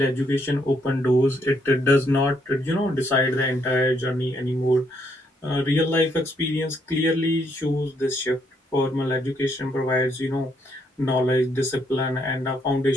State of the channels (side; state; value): both; normal; correlation 0.73